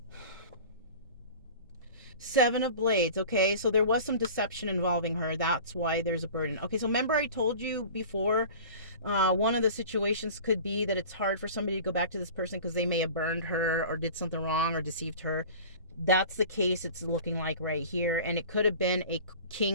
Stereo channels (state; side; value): inverted; both; correlation -0.40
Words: 7 of Blades. Okay, so there was some deception involving her. That's why there's a burden. Okay, so remember I told you before, one of the situations could be that it's hard for somebody to go back to this person because they may have burned her or did something wrong or deceived her. That's the case it's looking like right here. And it could have been a